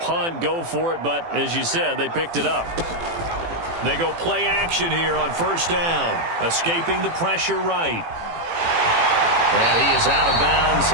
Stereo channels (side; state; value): left; late; 18 ms